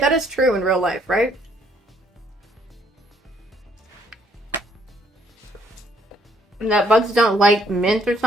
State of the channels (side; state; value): both; normal; correlation 0.66